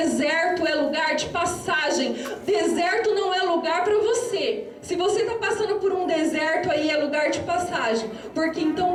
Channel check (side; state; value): both; identical; correlation 1.00